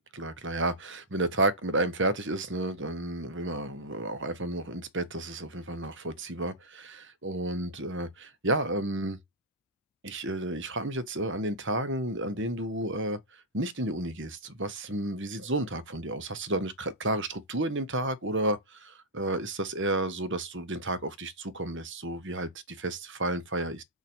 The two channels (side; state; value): both; normal; correlation -0.09